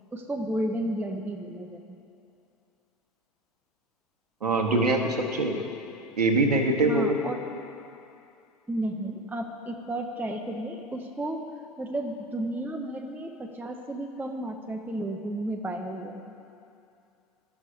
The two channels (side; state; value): both; normal; correlation 0.30